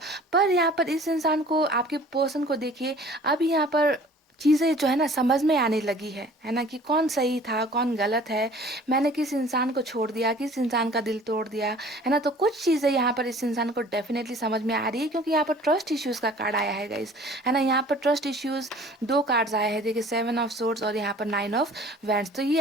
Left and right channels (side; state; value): both; normal; correlation 0.49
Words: पर यहाँ पर इस इंसान को, आपके पर्सन को देखिए, अब यहाँ पर चीज़ें जो है ना समझ में आने लगी है ना, कि कौन सही था कौन गलत है, मैंने किस इंसान को छोड़ दिया, किस इंसान का दिल तोड़ दिया, है ना। तो कुछ चीज़ें यहाँ पर इस इंसान को डेफिनेटली समझ में आ रही है, क्योंकि यहाँ पर ट्रस्ट इश्यूज़ का कार्ड आया है गाइस, है ना। यहाँ पर ट्रस्ट इश्यूज़ दो कार्ड्स आए हैं, देखिए 7 ऑफ सोर्ड्स और यहाँ पर 9 ऑफ वैंड्स। तो